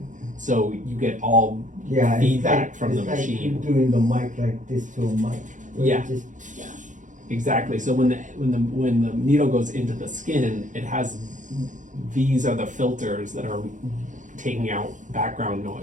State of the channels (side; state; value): left; late; 0.37 ms